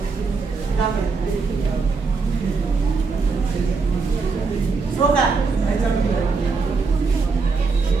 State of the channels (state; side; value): quieter; left; 4.5 dB